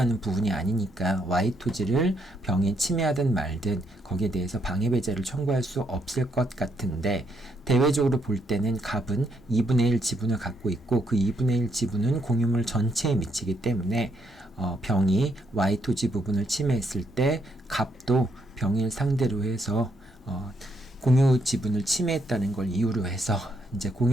부분이 아니니까 Y 토지를 병이 침해하든 말든 거기에 대해서 방해배제를 청구할 수 없을 것 같은데, 대외적으로 볼 때는 갑은 2분의 1 지분을 갖고 있고 그 2분의 1 지분은 공유물 전체에 미치기 때문에 병이 Y 토지 부분을 침해했을 때 갑도 병을 상대로 해서 공유 지분을 침해했다는 걸 이유로 해서 이제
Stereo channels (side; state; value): both; normal; correlation 0.75